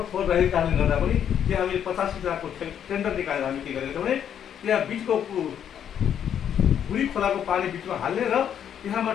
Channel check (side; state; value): right; quieter; 9.1 dB